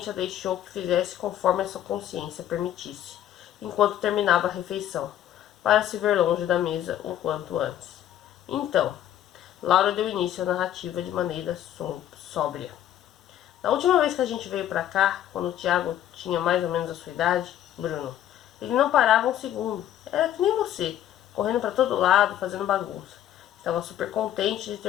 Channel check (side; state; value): right; quieter; 11.6 dB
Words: a deixou que fizesse conforme a sua consciência permitisse, enquanto terminava a refeição, para se ver longe da mesa o quanto antes. Então, Laura deu início à narrativa de maneira sóbria. Na última vez que a gente veio pra cá, quando o Tiago tinha mais ou menos a sua idade, Bruno, ele não parava um segundo. Era que nem você, correndo pra todo lado, fazendo bagunça. Estava super contente de